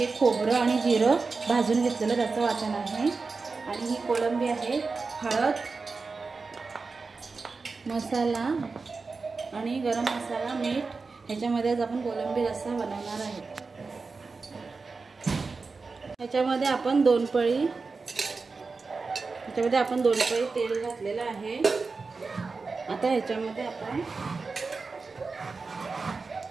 खोबरं आणि जिरं भाजून घेतलेलं त्याचं वाटण आहे। आणि ही कोळंबी आहे। हळद, मसाला आणि गरम मसाला, मीठ ह्याच्यामध्येच आपण कोळंबी रस्सा बनवणार आहे। ह्याच्यामध्ये आपण दोन पळी तेल घातलेलं आहे। आता ह्याच्यामध्ये आपण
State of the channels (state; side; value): quieter; left; 4.3 dB